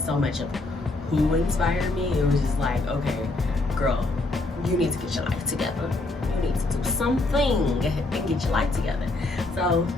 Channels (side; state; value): right; quieter; 3.0 dB